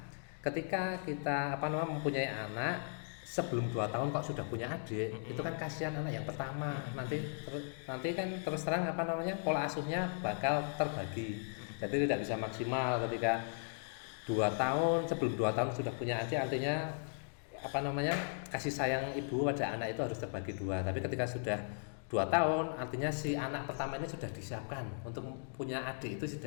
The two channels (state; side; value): silent; right; digital silence